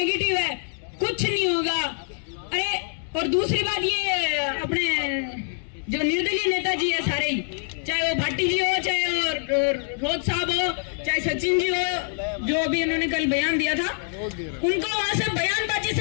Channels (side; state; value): right; silent; 62 dB below the other